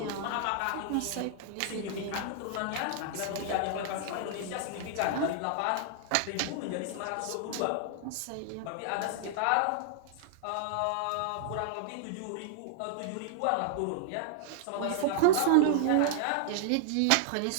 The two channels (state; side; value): different; both; correlation -0.01